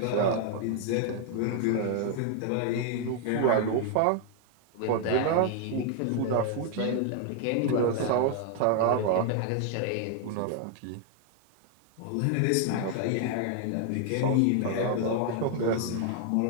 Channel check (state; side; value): different; both; correlation 0.00